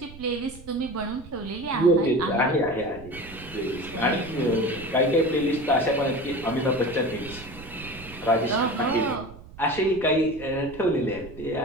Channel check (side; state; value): right; noise; rumble, 17 dB below the sound